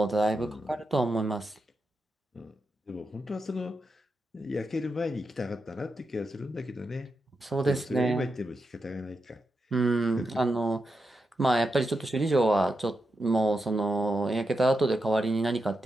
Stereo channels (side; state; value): both; normal; correlation 0.86